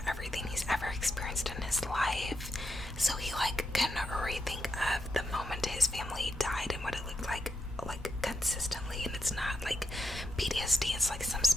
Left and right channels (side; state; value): both; normal; correlation 0.84